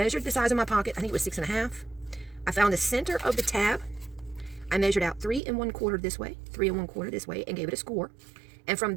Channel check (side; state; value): left; drops out; at 5.4 s